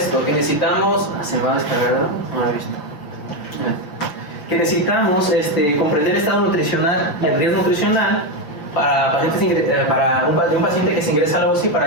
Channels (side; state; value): right; late; 6.3 ms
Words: que necesitamos, se me va a descargar, no lo he visto, que necesitamos comprender el estado nutricional y el riesgo nutricional para un paciente que se ingresa a la UCI para